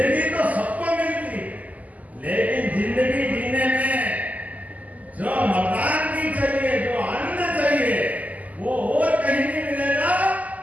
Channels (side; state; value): left; late; 0.076 ms